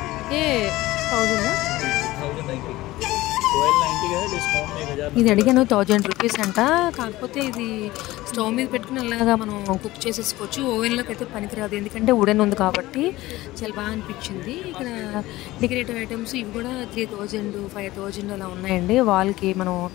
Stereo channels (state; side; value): quieter; right; 17.9 dB